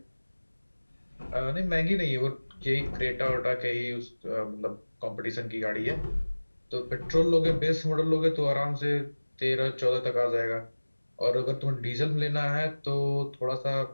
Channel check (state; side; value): inverted; both; correlation -1.00